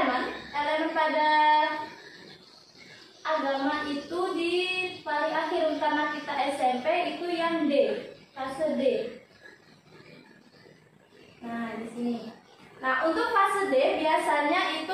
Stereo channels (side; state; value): both; identical; correlation 1.00